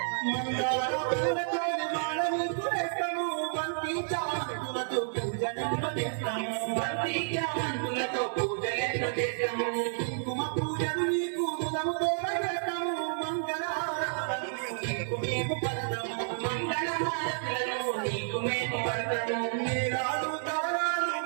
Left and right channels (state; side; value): silent; left; digital silence